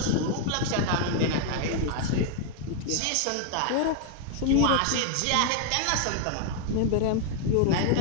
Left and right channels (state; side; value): different; both; correlation 0.00